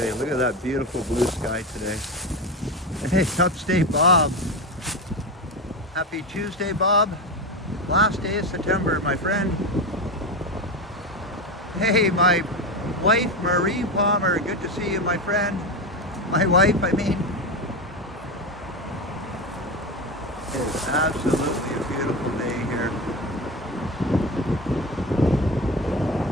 Look at that beautiful blue sky today. Hey, upstate Bob. Happy Tuesday, Bob. Last day of September, my friend. Hey, my wife, Marie Palmer. Good to see you, my friend. My wife, I mean. It is absolutely a beautiful day here.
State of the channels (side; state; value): both; normal; correlation 0.19